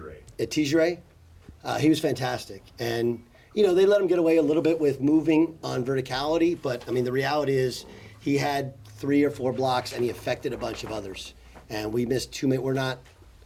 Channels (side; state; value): both; identical; correlation 1.00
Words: Tijere. He was fantastic. And, they let him get away a little bit with moving on verticality. But, the reality is he had 3 or 4 blocks, and he affected a bunch of others. And we missed 2 minutes. We're not